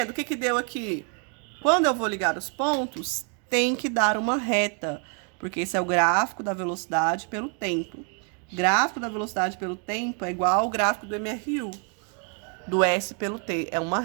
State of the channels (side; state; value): left; quieter; 39.0 dB